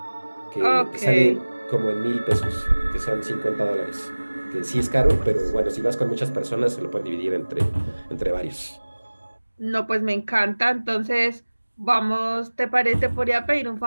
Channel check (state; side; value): inverted; both; correlation -1.00